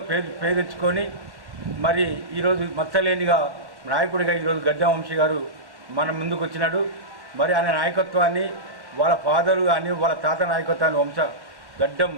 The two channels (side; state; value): left; late; 1.0 ms